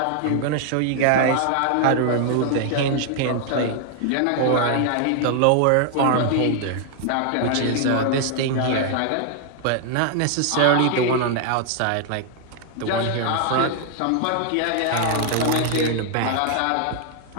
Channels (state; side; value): different; both; correlation 0.00